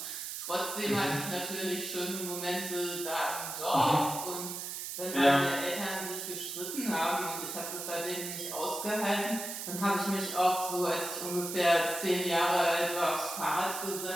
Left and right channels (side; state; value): right; noise; hiss, 6 dB below the sound